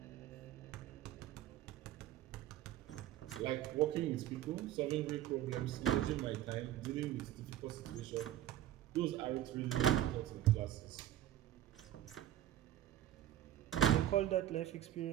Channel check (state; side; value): quieter; left; 12.3 dB